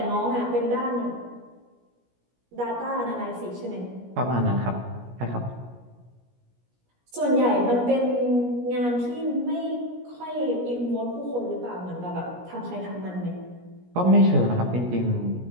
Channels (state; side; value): late; left; 17 ms